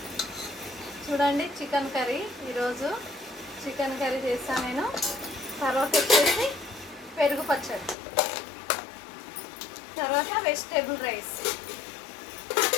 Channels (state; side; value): drops out; right; at 8.0 s